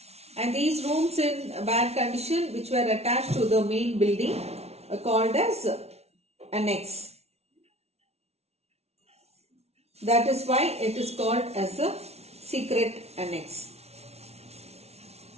And these rooms in bad condition which were attached to the main building are called as annex. That is why it is called as a secret annex.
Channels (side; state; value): left; late; 0.31 ms